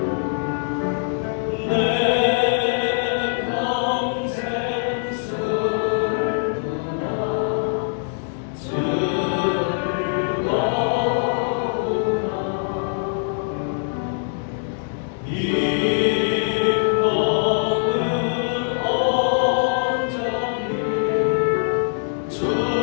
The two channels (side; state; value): right; silent; digital silence